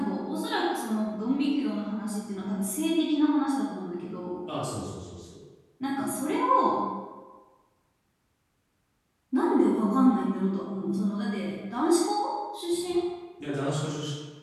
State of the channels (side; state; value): both; identical; correlation 1.00